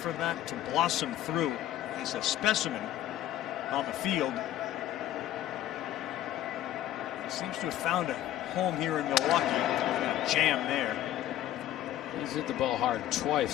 that to blossom through. He's a specimen on the field. He seems to have found a home here in Milwaukee. A jam there. He's hit the ball hard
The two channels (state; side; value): quieter; right; 12.7 dB